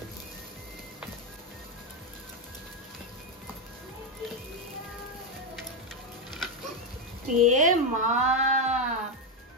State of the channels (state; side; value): normal; both; correlation 0.06